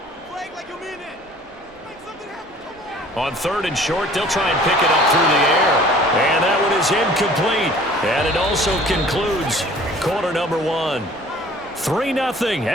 On 3rd and short, they'll try and pick it up through the air. And that one is incomplete. And it also concludes quarter number 1. 3-0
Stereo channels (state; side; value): normal; both; correlation 0.51